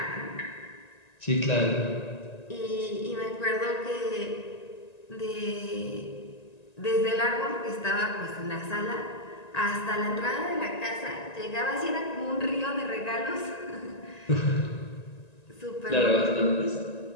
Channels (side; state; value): right; late; 1.9 ms